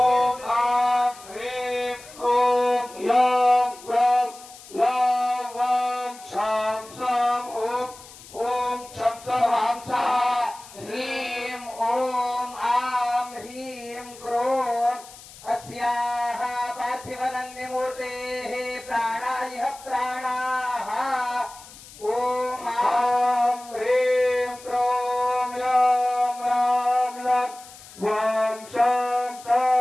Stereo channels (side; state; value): left; noise; hiss, 19 dB below the sound